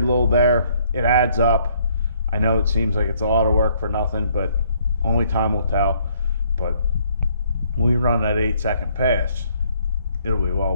little there, it adds up. I know it seems like it's a lot of work for nothing, but only time will tell. But when we run that 8-second pass, it'll be well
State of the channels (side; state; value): both; inverted; correlation -0.66